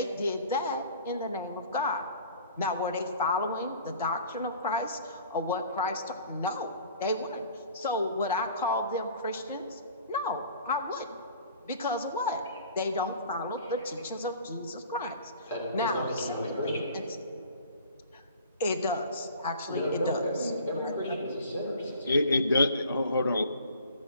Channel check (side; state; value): both; inverted; correlation -0.47